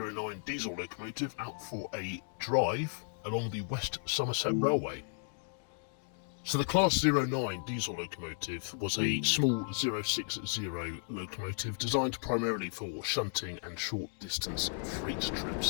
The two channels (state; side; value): silent; right; digital silence